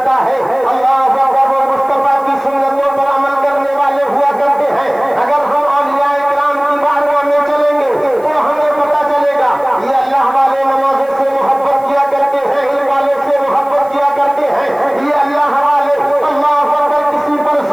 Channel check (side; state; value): right; noise; hiss, 28 dB below the sound